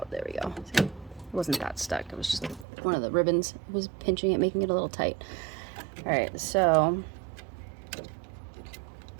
There we go. See? It wasn't that stuck. It was just one of the ribbons was pinching it, making it a little tight. All right, so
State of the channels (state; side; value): drops out; left; at 2.7 s